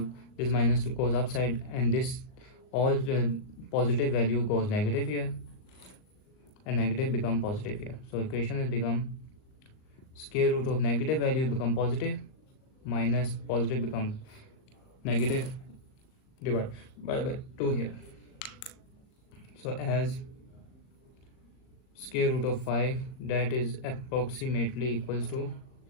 this minus 2 goes upside, and this all positive value goes negative here, and negative become positive here. So equation has become square root of negative value become positive minus positive become negative divided by 2 here. So as square root of 5, that is approximately equals to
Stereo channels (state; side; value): late; right; 38 ms